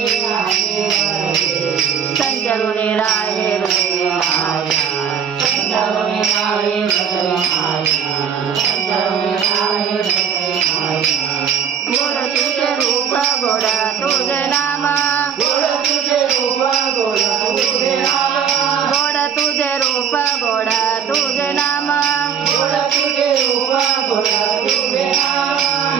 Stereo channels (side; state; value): left; quieter; 7.8 dB